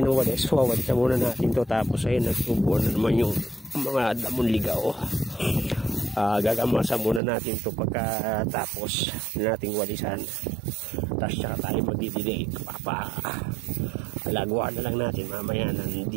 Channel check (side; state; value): left; drops out; at 7.2 s